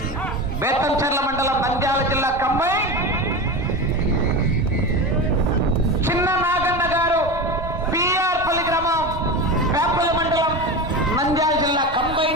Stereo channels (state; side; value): normal; both; correlation 0.24